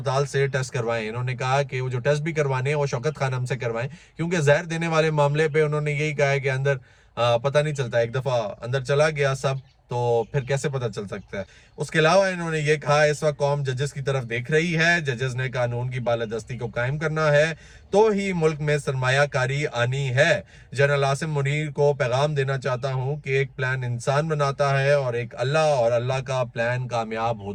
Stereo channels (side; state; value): both; identical; correlation 1.00